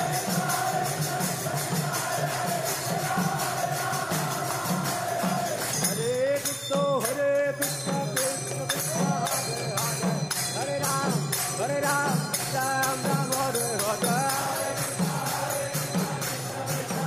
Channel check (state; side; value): identical; both; correlation 1.00